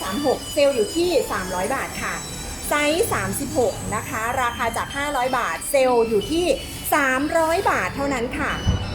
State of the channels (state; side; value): identical; both; correlation 1.00